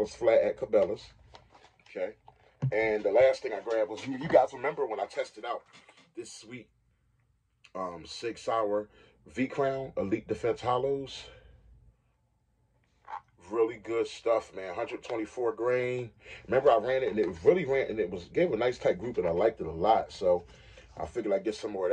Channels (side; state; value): both; identical; correlation 1.00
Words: flat at Cabela's. Okay. And the last thing I grabbed was, you guys remember when I tested out this sweet Sig Sauer V-Crown Elite Defense Hollows? Really good stuff, man. 124 grain. Remember, I ran it, and it really ran, and gave a nice tight group, and I liked it a lot. So I figured I'd get some more